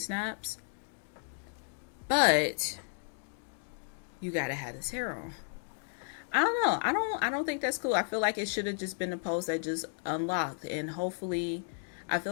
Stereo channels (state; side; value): silent; right; 56 dB below the other